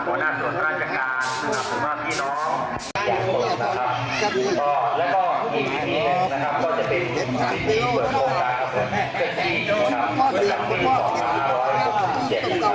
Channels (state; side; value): identical; both; correlation 1.00